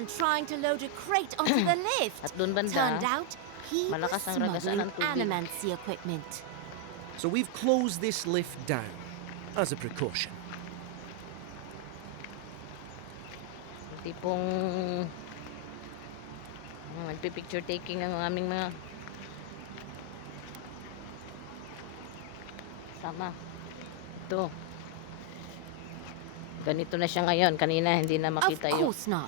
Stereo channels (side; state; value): both; different; correlation 0.00